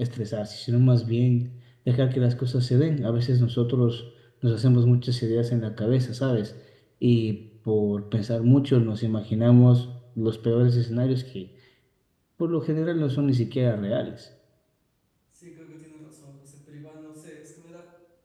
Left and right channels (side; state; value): both; identical; correlation 1.00